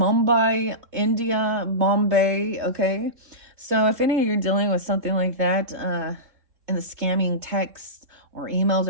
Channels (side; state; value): left; late; 3.6 ms